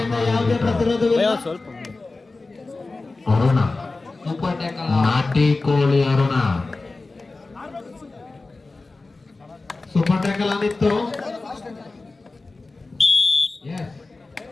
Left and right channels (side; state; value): right; quieter; 3.5 dB